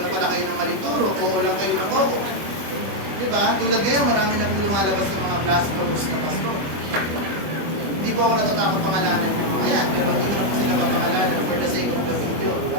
pala kayo ng maling turo, oo lang kayo ng oo. Diba? Tulad ngayon, marami na po lumalabas ng mga blasphemous na pastor. Hindi po ako natatakot pangalanan ng mga yan, pero hindi ko sila mapangalanan for the sake of the video,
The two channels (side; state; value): left; late; 25 ms